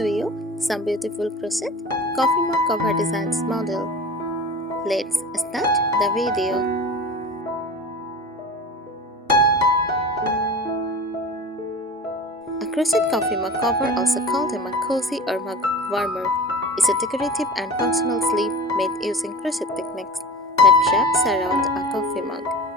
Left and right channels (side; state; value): both; normal; correlation 0.35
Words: you some beautiful crochet coffee mug cover designs model. Let's start the video. A crochet coffee mug cover, also called a mug cozy or mug warmer, is a decorative and functional sleeve made using crochet techniques that wraps around a coffee mug.